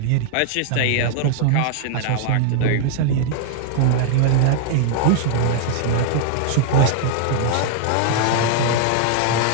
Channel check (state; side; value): different; both; correlation -0.01